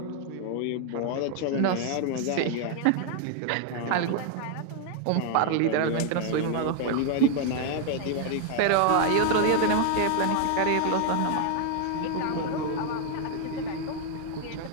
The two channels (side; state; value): both; different; correlation 0.00